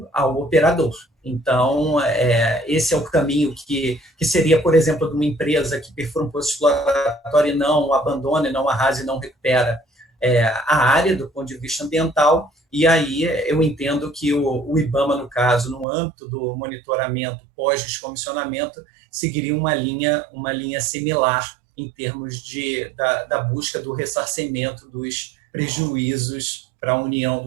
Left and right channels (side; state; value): left; drops out; at 15.9 s